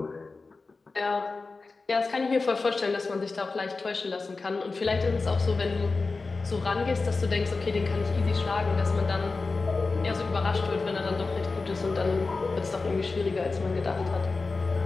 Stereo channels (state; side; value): quieter; right; 3.9 dB